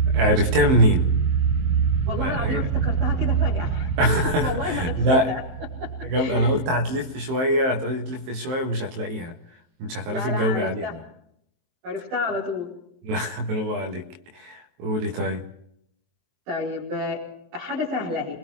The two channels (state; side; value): late; left; 23 ms